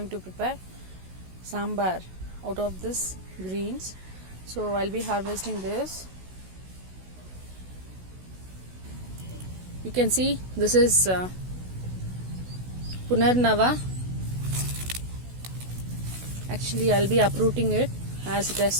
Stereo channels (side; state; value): left; late; 16 ms